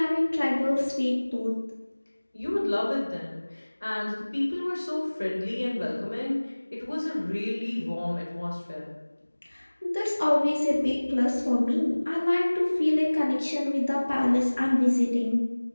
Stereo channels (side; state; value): both; inverted; correlation -1.00